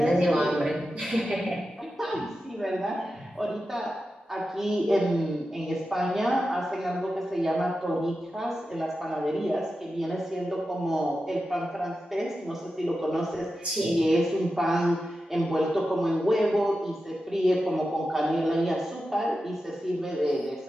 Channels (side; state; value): both; normal; correlation 0.91